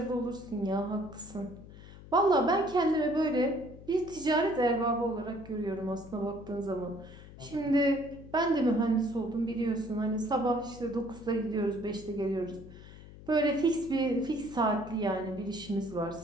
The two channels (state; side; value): noise; left; hum, 17 dB below the sound